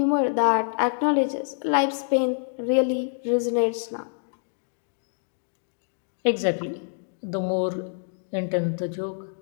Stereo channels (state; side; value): silent; right; digital silence